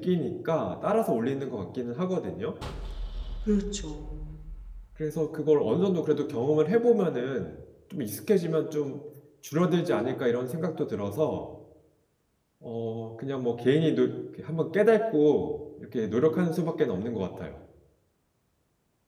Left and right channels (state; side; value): identical; both; correlation 1.00